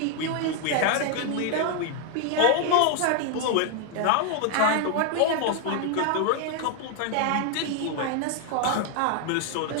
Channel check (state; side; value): different; both; correlation 0.00